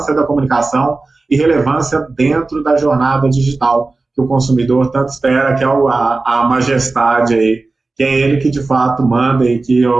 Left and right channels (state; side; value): quieter; left; 3.5 dB